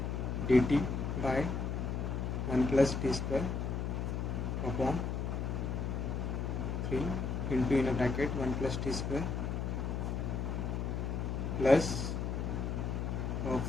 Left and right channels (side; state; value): left; noise; hum, 1 dB below the sound